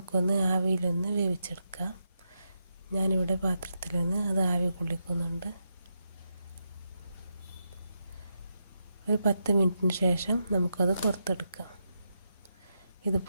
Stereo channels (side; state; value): both; inverted; correlation -0.85